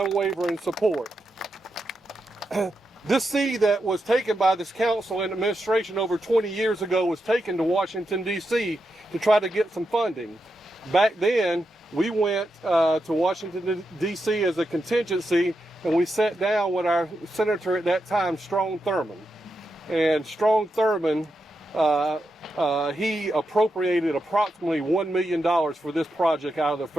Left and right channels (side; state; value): both; normal; correlation 0.86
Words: support. This seed that was taken by this council and administration over 20 years ago was taken to Washington, D.C. to try to get some funding. Back then, we went to Washington, D.C. as a contingency, and we sat down with our senator at that time, Strong Thurmond. And Strong Thurmond, he appropriated approximately $1 million for this project out of the